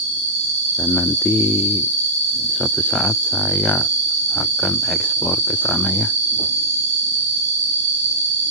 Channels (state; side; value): normal; both; correlation -0.13